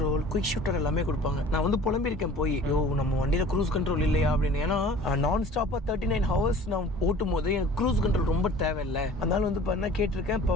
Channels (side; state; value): both; normal; correlation 0.46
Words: குயிக் ஷூட்டர் எல்லாமே கொடுப்பாங்க. நான் வந்து புலம்பிருக்கேன் போய், நம்ம வண்டியில் க்ரூஸ் கண்ட்ரோல் இல்லையா அப்படின்னு. ஏன்னா நான் ஸ்டாப்பாக 39 ஹவர்ஸ் நான் ஓட்டும் போது எனக்கு க்ரூஸ் கண்ட்ரோல் ரொம்ப தேவையில்லை. அதனால வந்து பார்த்தா கேட்டிருக்கேன். இப்போ